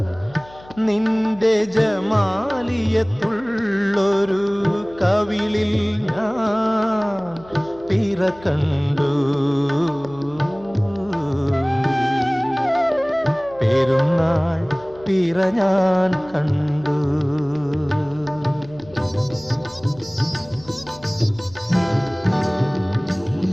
നിന്റെ ജമാലിയത്തുള്ളൊരു കവിളിൽ ഞാൻ പിറ കണ്ടു പെരുന്നാൾ പിറ ഞാൻ കണ്ടു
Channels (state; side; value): noise; left; hum, 22 dB below the sound